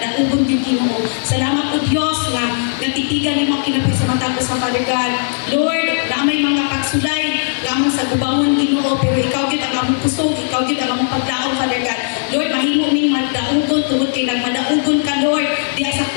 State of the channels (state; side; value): silent; right; digital silence